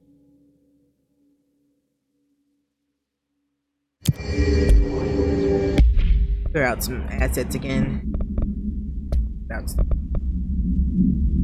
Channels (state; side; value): identical; both; correlation 1.00